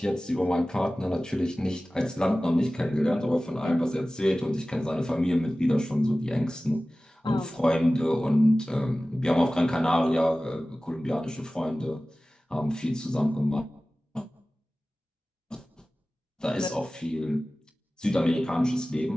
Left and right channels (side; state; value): both; normal; correlation 0.97